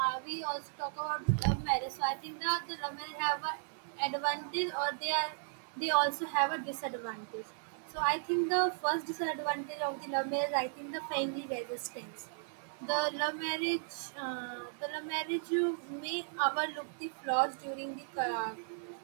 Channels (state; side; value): silent; left; digital silence